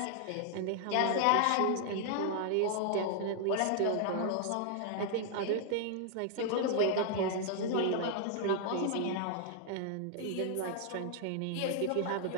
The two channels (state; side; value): different; both; correlation 0.00